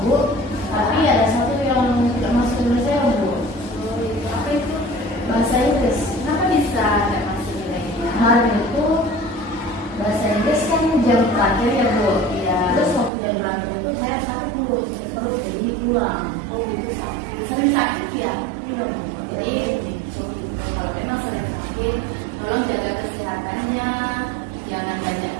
Bu. Tapi ada satu yang tidak masuk nilai saya, Bu. Oh, itu apa itu? Bahasa Inggris. Kenapa bisa tidak masuk nilainya? Kemarin itu bahasa Inggris kan jam terakhir ya, Bu. Iya. Terus waktu jam terakhir itu saya sakit, Bu. Sakit perut, jadi pulang. Oh, itu sakit. Sering sakit ya? Iya. Jadi kalau memang sering sakit, tolong jaga kesehatannya, jangan banyak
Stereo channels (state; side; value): drops out; left; at 13.1 s